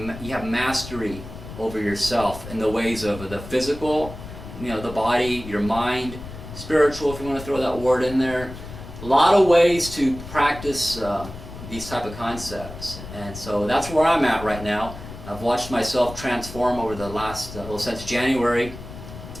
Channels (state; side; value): noise; left; rumble, 12 dB below the sound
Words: you have mastery over yourself in the ways of the physical, you know, the body, your mind, spiritual, if you want to throw that word in there. A lot of ways to practice these type of concepts, and so that's where I'm at right now. I've watched myself transform over the last, well, since January,